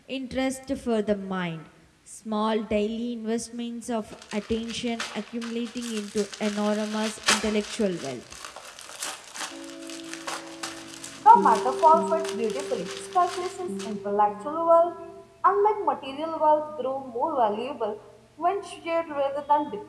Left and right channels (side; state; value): both; identical; correlation 1.00